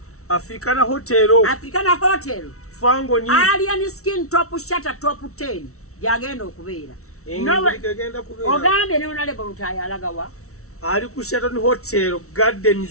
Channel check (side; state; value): right; late; 0.64 ms